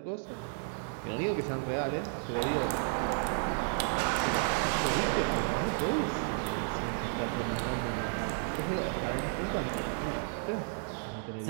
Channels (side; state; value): left; silent; 56 dB below the other